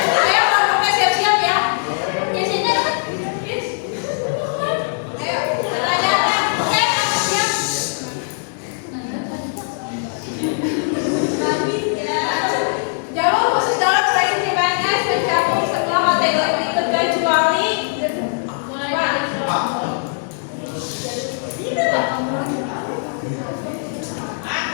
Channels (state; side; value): silent; right; 66 dB below the other